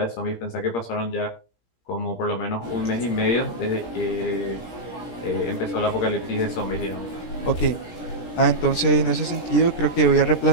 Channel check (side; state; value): right; late; 17 ms